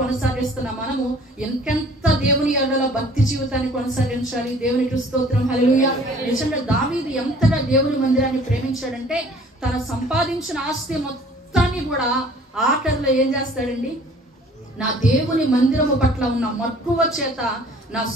మనము ఎంకెంత దేవుని ఎడల భక్తి జీవితాన్ని కొనసాగించాలి. దేవునికి స్తోత్రం, హల్లెలూయా. నిజంగా దావీదు ఎంతగా దేవుని మందిరాన్ని ప్రేమించాడంటే తన సంపాదించిన ఆస్తి మొత్తాన్ని కూడా ఆఖరిలో ఏం చేస్తాడండి? నా దేవుని మందిరము పట్ల ఉన్న మక్కువ చేత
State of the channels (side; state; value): both; normal; correlation 0.52